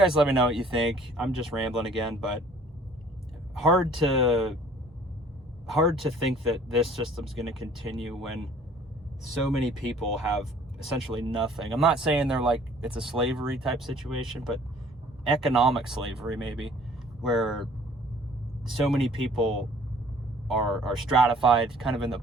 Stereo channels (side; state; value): both; normal; correlation 0.54